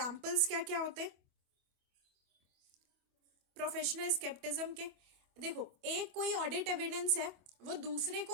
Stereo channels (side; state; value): left; late; 25 ms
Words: क्या क्या होते हैं प्रोफेशनल स्केप्टिज्म के, देखो, एक कोई ऑडिट एविडेंस है, वो दूसरे